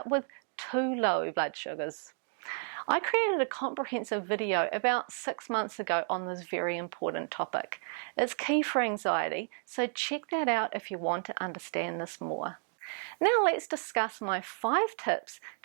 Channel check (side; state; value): left; silent; 56 dB below the other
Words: with too low blood sugars. I created a comprehensive video about 6 months ago on this very important topic. It's key for anxiety, so check that out if you want to understand this more. Now let's discuss my 5 tips